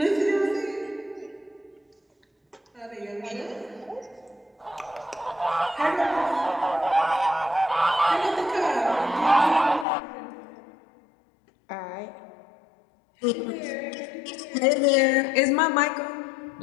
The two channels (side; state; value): right; drops out; at 9.9 s